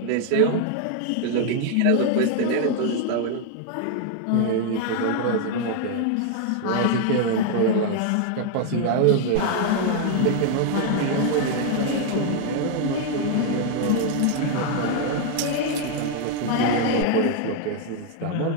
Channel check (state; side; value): different; both; correlation 0.00